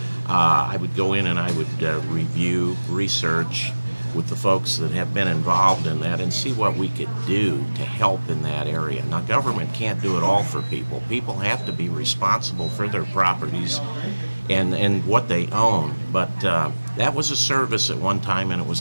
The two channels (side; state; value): both; inverted; correlation -1.00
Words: I would go in and I would review, research with the folks that have been involved in that and see what we could do to help in that area. Now, government can't do it all for people. People have to be responsible for their properties and what they own. But that was a service at one time, and it